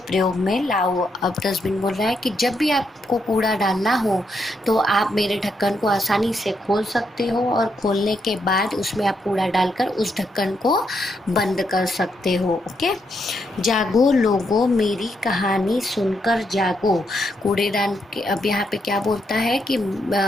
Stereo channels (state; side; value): normal; both; correlation 0.79